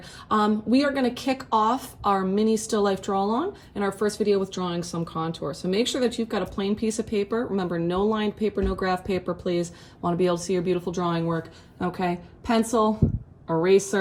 We are gonna kick off our mini still life draw along in our first video with drawing some contour. So make sure that you've got a plain piece of paper. Remember, no lined paper, no graph paper, please. Want to be able to see your beautiful drawing work, okay? Pencil,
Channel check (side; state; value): both; identical; correlation 1.00